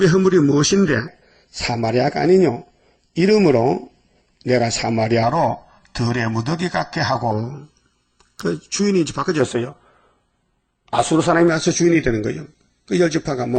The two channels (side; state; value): both; identical; correlation 1.00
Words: 허물이 무엇인데 사마리아가 아니뇨. 이름으로 내가 사마리아로 들의 무더기 같게 하고 그 주인이 이제 바꿔졌어요. 아수르 사람이 와서 주인이 되는 거예요. 그 열지파가